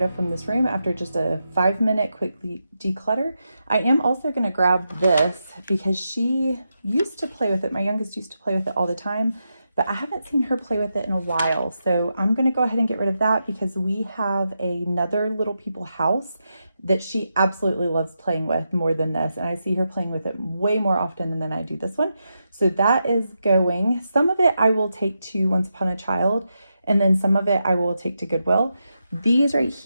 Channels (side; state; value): both; inverted; correlation -0.86